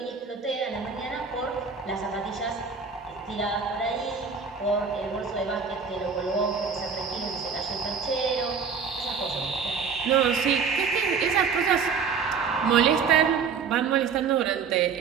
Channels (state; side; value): quieter; left; 5.8 dB